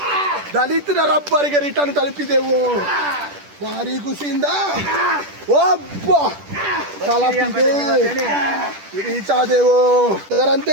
ದಲಿತರ ರಬ್ಬರಿಗೆ ರಿಟರ್ನ್ ತಲುಪಿದೆವು. ಭಾರಿ ಖುಷಿಯಿಂದ ಒಬ್ಬ ತಲುಪಿದೆ ರೀಚ್ ಆದೆವು.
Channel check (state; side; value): late; left; 10 ms